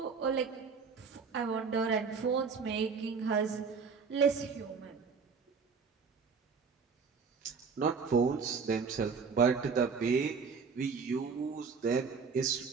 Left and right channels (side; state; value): left; quieter; 5.4 dB